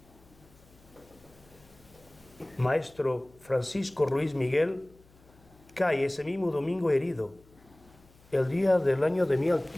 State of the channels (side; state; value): left; noise; hum, 27 dB below the sound